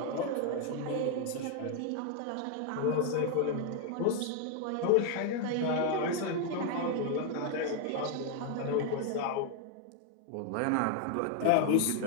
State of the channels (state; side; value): different; both; correlation 0.00